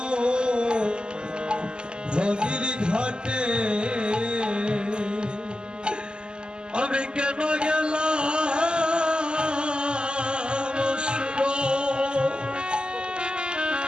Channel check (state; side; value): late; left; 0.048 ms